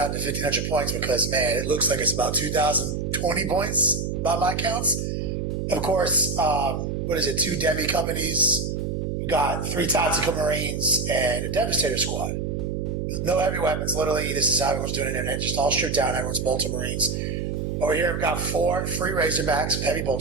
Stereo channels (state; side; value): noise; right; hum, 2 dB below the sound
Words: to 1,500 points because, man, it looks like it's about 2,020 points by my counts. Of course, 2 demi companies. We've got 3 tactical marines and a devastator squad. No heavy weapons, literally. This is how everyone's doing it, and just all stripped down. Everyone's bolter marines. Over here, we've got 4 free razorbacks with heavy